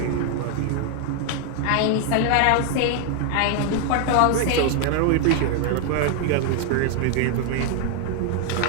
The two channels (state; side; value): different; both; correlation 0.00